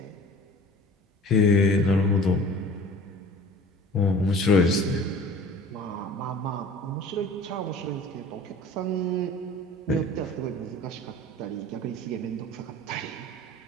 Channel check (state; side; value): normal; both; correlation 0.43